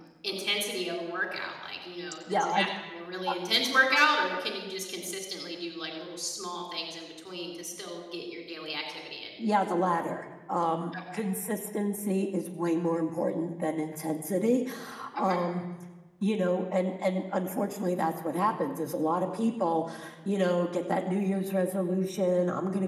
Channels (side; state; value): both; identical; correlation 1.00